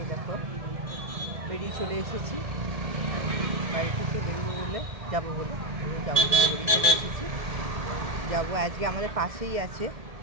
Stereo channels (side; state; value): left; late; 1.7 ms